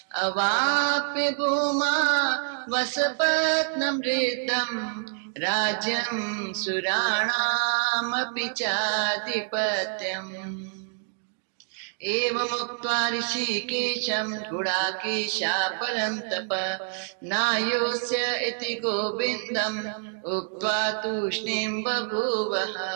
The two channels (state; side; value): silent; left; digital silence